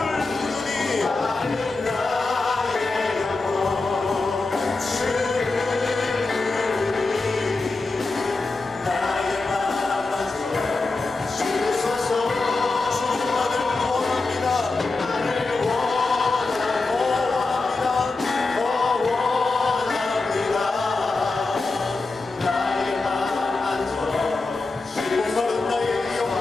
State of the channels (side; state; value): right; quieter; 3.6 dB